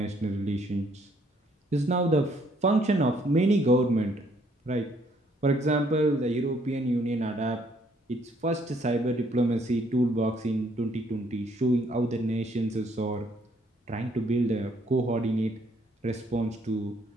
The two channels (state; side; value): normal; both; correlation 0.67